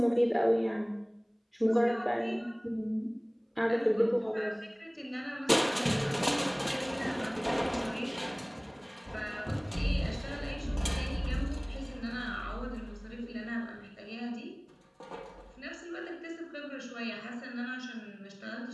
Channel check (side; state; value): both; identical; correlation 1.00